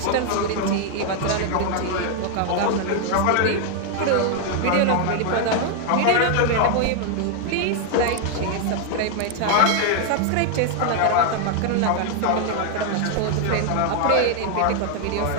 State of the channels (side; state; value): both; different; correlation 0.00